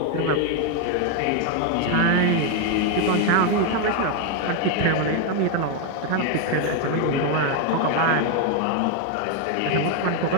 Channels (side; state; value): both; different; correlation 0.01